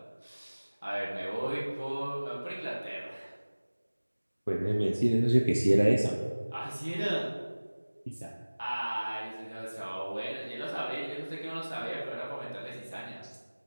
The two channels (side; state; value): both; inverted; correlation -1.00